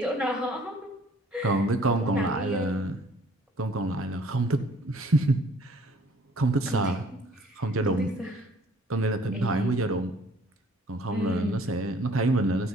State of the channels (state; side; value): normal; both; correlation 0.56